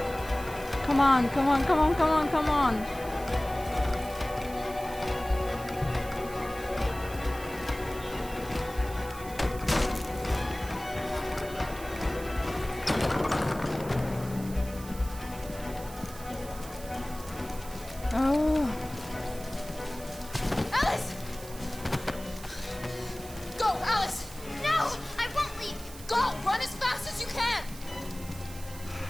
Come on, come on, come on, come on, come on! Oh. Alice! Go, Alice! No! I won't leave! Go! Run as fast as you can!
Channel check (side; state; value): right; noise; hiss, 16 dB below the sound